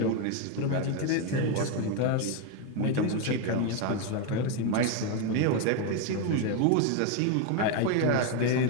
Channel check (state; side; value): different; both; correlation 0.01